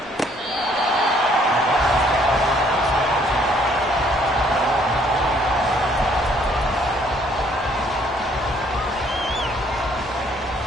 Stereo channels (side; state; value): both; normal; correlation 0.63